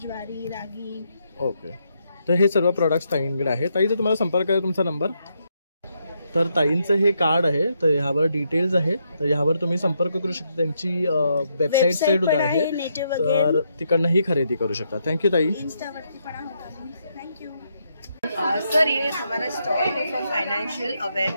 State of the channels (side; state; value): both; inverted; correlation -0.78